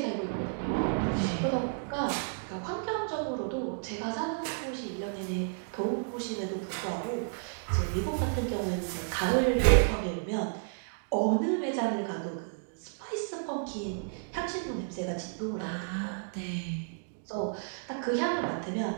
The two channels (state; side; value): silent; left; digital silence